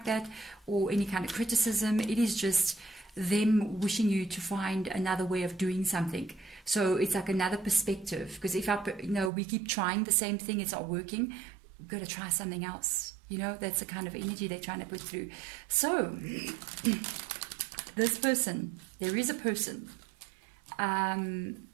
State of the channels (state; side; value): drops out; left; at 9.3 s